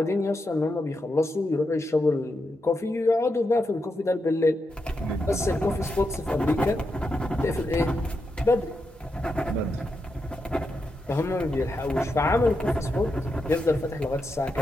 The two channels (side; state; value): both; normal; correlation 0.85